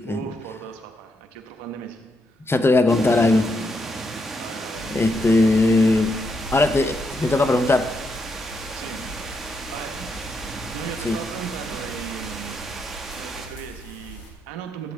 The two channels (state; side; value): normal; both; correlation 0.80